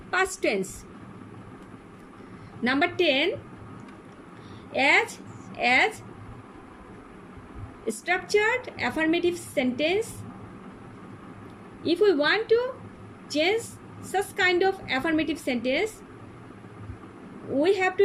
past tense. Number 10, as structured affirmative sentence. If we want to change such kind of affirmative sentence, we have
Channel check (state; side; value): identical; both; correlation 1.00